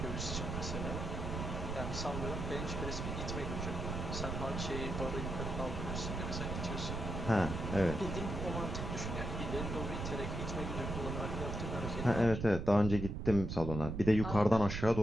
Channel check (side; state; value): right; noise; rumble, 4 dB below the sound